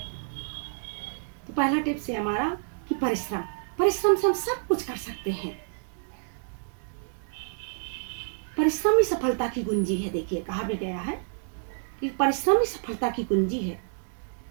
तो पहला टिप्स है हमारा कि परिश्रम से हम सब कुछ कर सकते हैं। परिश्रम ही सफलता की कुंजी है। देखिए कहा भी गया है कि परिश्रम ही सफलता की कुंजी है।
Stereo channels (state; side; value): silent; left; digital silence